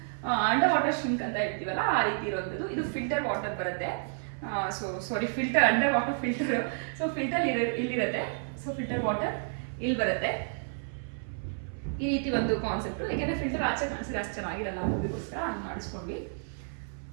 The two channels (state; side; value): silent; left; 57 dB below the other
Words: ಅಂಡರ್ ವಾಟರ್ ಶಿಂಕ್ ಅಂತ ಹೇಳ್ತೀವಲ್ಲ ಆ ರೀತಿ ಇರುವಂಥದ್ದು. ಇದು ಫಿಲ್ಟರ್ ವಾಟರ್ ಬರುತ್ತೆ. Filter, under water filter. So filter ಇಲ್ಲಿರುತ್ತೆ. ಸೊ ಫಿಲ್ಟರ್ ವಾಟರ್ ಇಲ್ಲಿ ಬರುತ್ತೆ. ಈ ರೀತಿ ಒಂದು ಕಾನ್ಸೆಪ್ಟ್. ಯಾಕೆಂದ್ರೆ ಫಿಲ್ಟರ್ ಆಚೆ ಕಾಣಿಸಿದ್ರೆ ಅಷ್ಟು ಚೆನ್ನಾಗಿರಲ್ಲ ಅನ್ನೋದಕ್ಕೋಸ್ಕರ ಹಂಗೆ ಮಾಡಿಸ್ಕೊಂಡ್ವಿ.